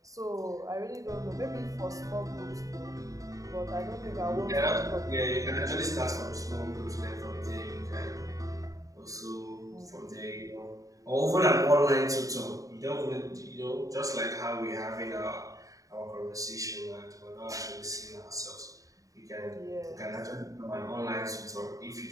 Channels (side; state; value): left; late; 0.16 ms